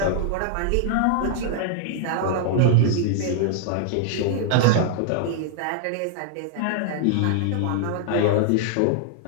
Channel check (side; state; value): both; different; correlation -0.01